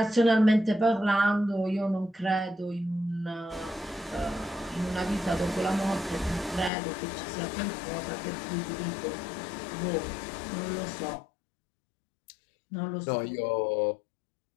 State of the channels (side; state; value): right; drops out; at 6.7 s